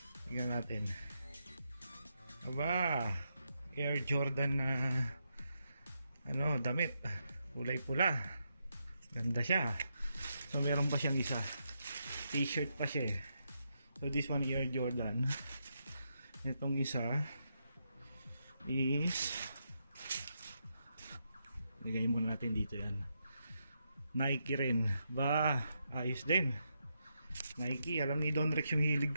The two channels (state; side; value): inverted; both; correlation -0.82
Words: tingnan natin. Aba, Air Jordan na damit, kulay pula. Ganda siya. So meron pa siyang isa, t-shirt pa siya eh. So this one Air Jordan. Itong isa is, ligay muna natin dito yan, Nike rin. Ba, ayos din Nike. Alam ni Don Rex yung hilig